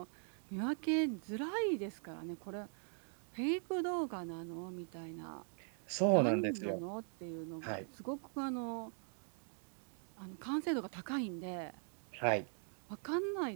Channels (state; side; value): silent; left; 50 dB below the other